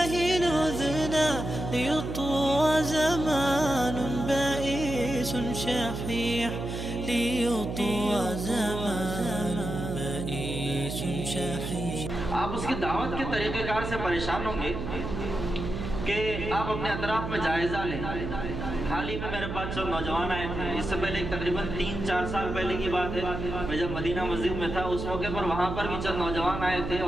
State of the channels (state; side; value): noise; right; hum, 5 dB below the sound